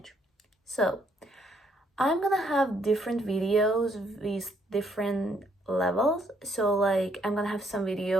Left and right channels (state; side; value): normal; both; correlation 0.70